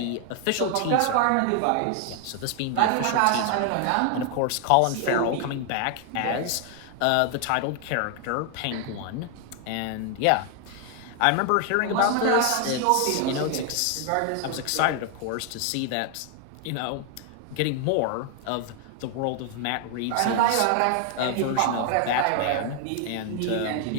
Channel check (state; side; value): different; both; correlation 0.00